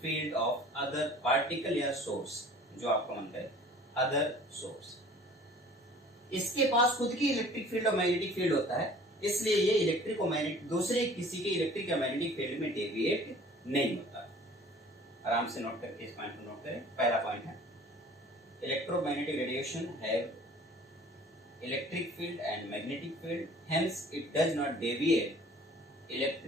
field of other particle या source, जो आपका मन करे, अदर सोर्स। इसके पास खुद की इलेक्ट्रिक फील्ड और मैग्नेटिक फील्ड होता है, इसलिए ये इलेक्ट्रिक और मैग्नेटिक दूसरे किसी के इलेक्ट्रिक या मैग्नेटिक फील्ड में डेविएट नहीं होता। आराम से नोट करके इस पॉइंट को नोट करें। पहला पॉइंट है, electromagnetic radiation have electric field and magnetic field, hence it does not deviate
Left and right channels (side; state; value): both; normal; correlation 0.48